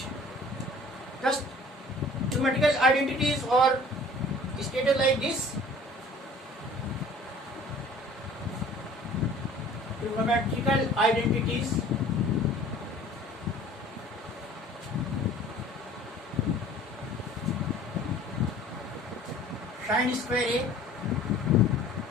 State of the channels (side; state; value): both; normal; correlation 0.49